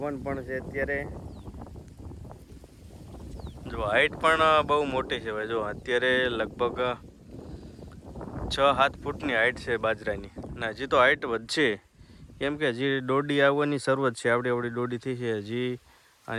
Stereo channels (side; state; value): both; identical; correlation 1.00